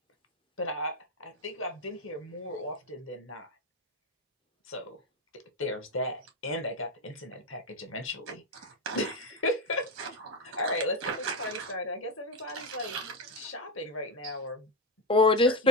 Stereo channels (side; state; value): both; normal; correlation 0.13